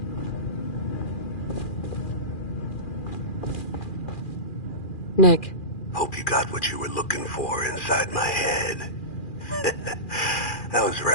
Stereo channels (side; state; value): right; late; 2.4 ms